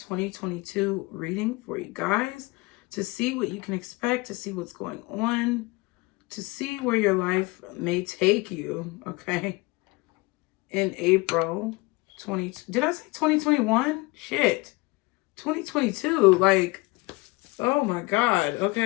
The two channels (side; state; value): right; quieter; 24.0 dB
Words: reading for you guys to see what you can expect, to see what's going on, to see where your life may take you, okay? In April 20... Did I say 2021? Shit. 2022. Like, oh my God,